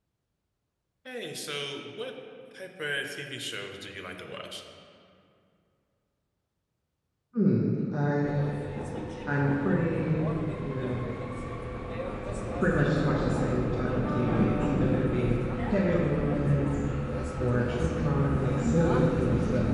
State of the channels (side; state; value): both; identical; correlation 1.00